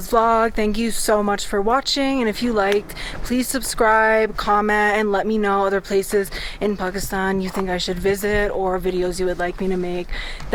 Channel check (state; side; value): identical; both; correlation 1.00